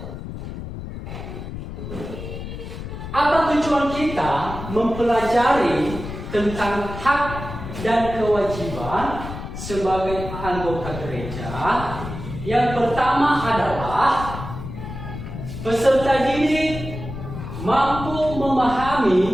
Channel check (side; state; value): left; noise; rumble, 9 dB below the sound